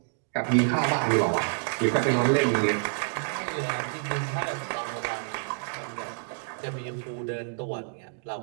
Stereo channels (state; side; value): silent; left; digital silence